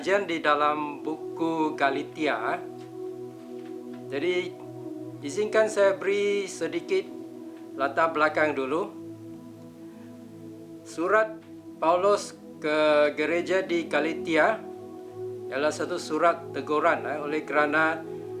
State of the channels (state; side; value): identical; both; correlation 1.00